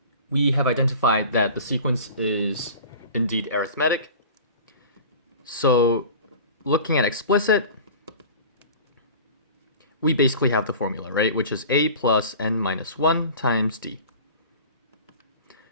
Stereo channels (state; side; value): inverted; both; correlation -0.39